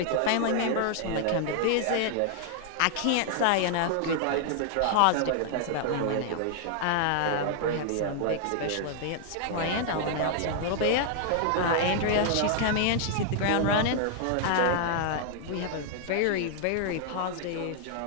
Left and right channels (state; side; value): different; both; correlation 0.00